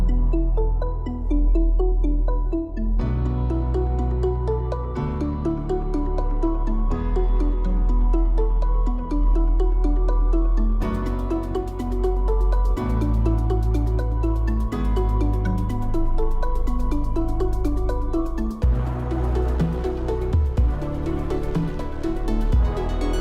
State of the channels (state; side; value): identical; both; correlation 1.00